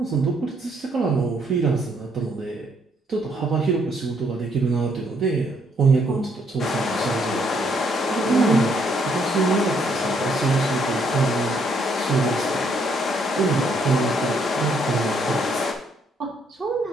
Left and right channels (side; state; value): both; normal; correlation 0.70